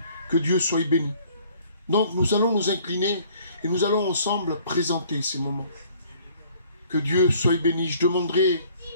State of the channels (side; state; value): both; inverted; correlation -0.57